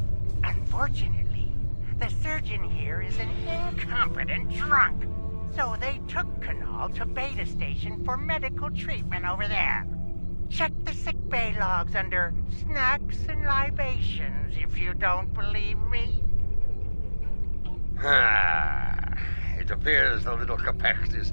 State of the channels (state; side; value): inverted; both; correlation -1.00